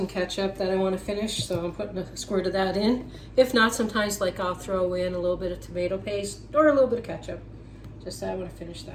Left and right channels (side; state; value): both; identical; correlation 1.00